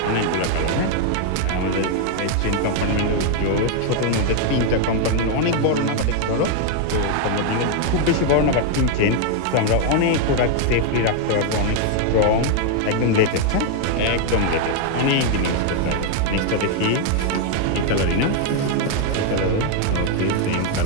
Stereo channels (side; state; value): both; different; correlation 0.00